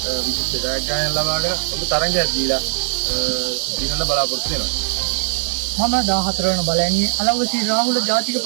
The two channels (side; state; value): left; silent; 58 dB below the other